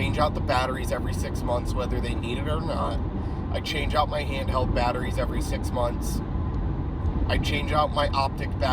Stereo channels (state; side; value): identical; both; correlation 1.00